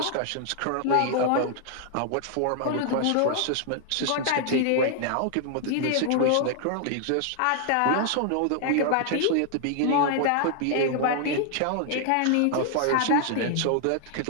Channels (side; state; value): both; different; correlation 0.00